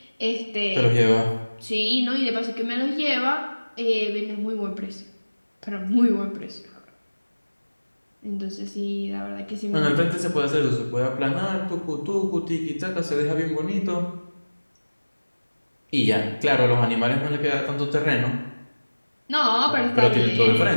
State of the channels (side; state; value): both; inverted; correlation -1.00